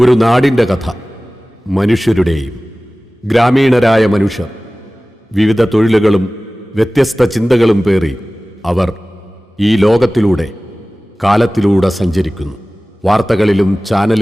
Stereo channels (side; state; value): both; normal; correlation 0.98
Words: നാടിൻ്റെ കഥ. മനുഷ്യരുടെയും. ഗ്രാമീണരായ മനുഷ്യർ വിവിധ തൊഴിലുകളും വ്യത്യസ്ത ചിന്തകളും പേറി അവർ ഈ ലോകത്തിലൂടെ കാലത്തിലൂടെ സഞ്ചരിക്കുന്നു. വാർത്തകളിലും